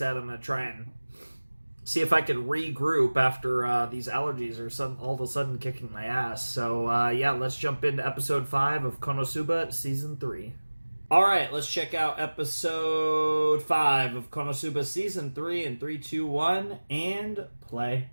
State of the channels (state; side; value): inverted; both; correlation -1.00